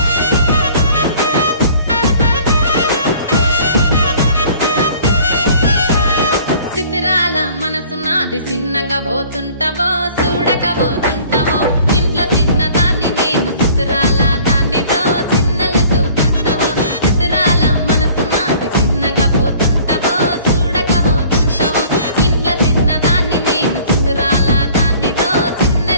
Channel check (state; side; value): inverted; both; correlation -0.52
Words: సితిరాల మనసు నాది చిన్నగా పోతుంటావో చూడకపోతుంటావో ఇంట్లో చిన్న దాన్ని నేను సితిరాల దాన్నితో చిన్నలు చూపిస్తావో సితిరాల మనసు నాది చిన్నగా పోతుంటావో చూడకపోతుంటావో ఇంట్లో చిన్న దాన్ని నేను సితిరాల దాన్నితో